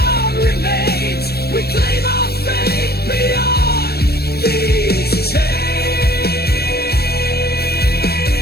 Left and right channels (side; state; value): right; late; 0.46 ms